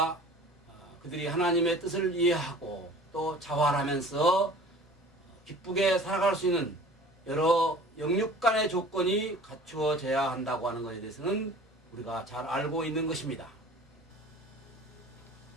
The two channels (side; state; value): both; normal; correlation 0.44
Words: 그들이 하나님의 뜻을 이해하고 또 자활하면서 기쁘게 살아갈 수 있는 여러 영육 간의 조건이 갖추어져야 한다고 하는 것에 대해서는 우리가 잘 알고 있는 것입니다.